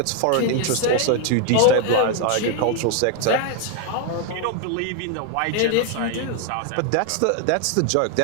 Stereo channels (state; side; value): different; both; correlation 0.01